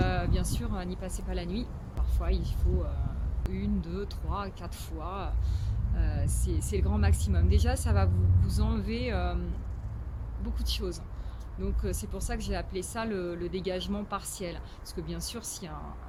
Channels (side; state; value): both; identical; correlation 1.00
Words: sûr, n'y passez pas la nuit. Parfois, il faut 1, 2, 3, 4 fois. C'est le grand maximum. Déjà, ça va vous enlever beaucoup de choses. Donc, c'est pour ça que j'ai appelé ça le dégagement partiel. Parce que bien sûr, s'il y a